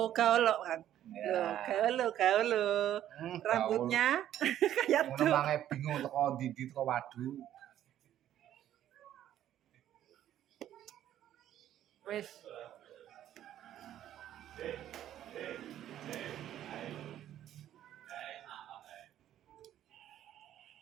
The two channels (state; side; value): quieter; left; 11.7 dB